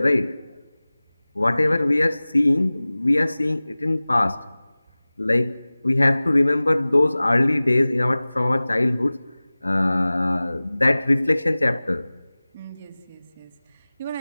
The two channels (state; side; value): inverted; both; correlation -0.99